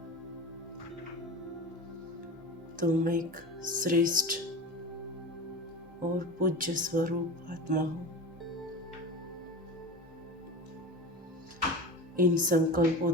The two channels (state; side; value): normal; both; correlation 0.30